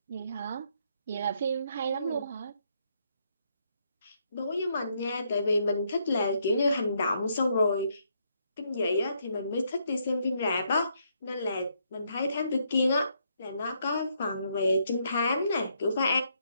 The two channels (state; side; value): inverted; both; correlation -0.74